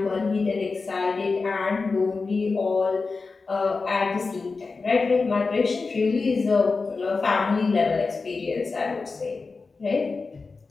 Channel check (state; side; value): quieter; right; 4.2 dB